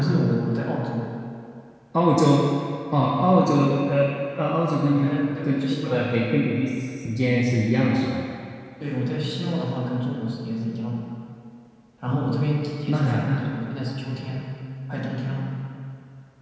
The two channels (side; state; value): both; identical; correlation 1.00